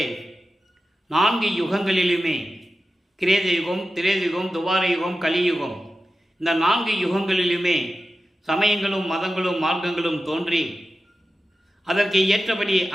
4 யுகங்களிலுமே, கிரேத யுகம், திரேத யுகம், துவார யுகம், கலியுகம், இந்த 4 யுகங்களிலுமே சமயங்களும் மதங்களும் மார்க்கங்களும் தோன்றி அதற்கு ஏற்றபடி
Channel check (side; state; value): both; normal; correlation 0.93